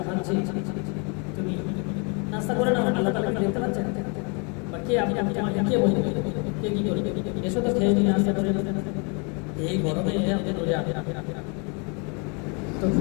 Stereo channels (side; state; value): right; quieter; 34.5 dB